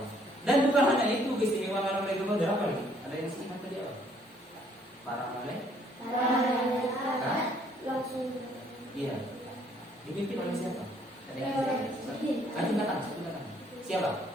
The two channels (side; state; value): both; normal; correlation 0.64